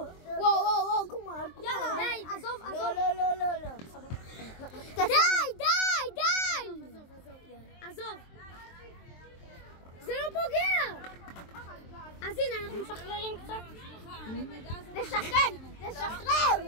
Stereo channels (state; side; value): late; right; 23 ms